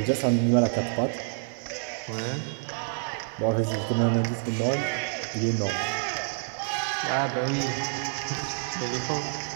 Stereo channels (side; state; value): left; silent; 59 dB below the other